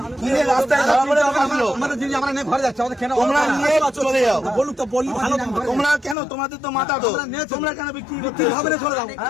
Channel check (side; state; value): right; drops out; at 6.2 s